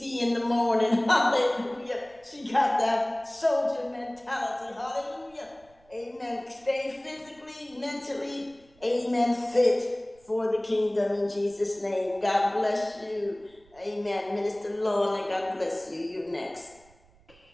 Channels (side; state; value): right; noise; rumble, 30 dB below the sound